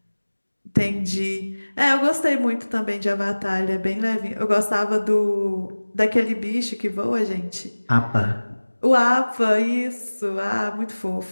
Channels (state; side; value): inverted; both; correlation -1.00